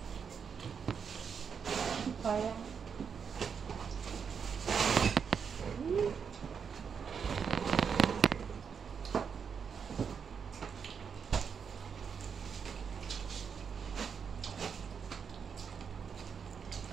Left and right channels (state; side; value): quieter; left; 6.6 dB